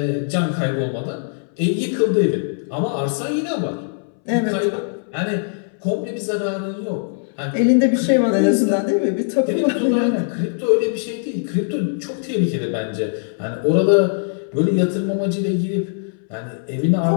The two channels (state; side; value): silent; right; 64 dB below the other